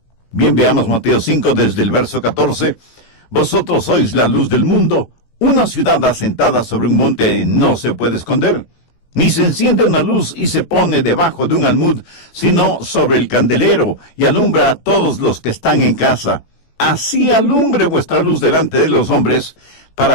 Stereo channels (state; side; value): late; right; 18 ms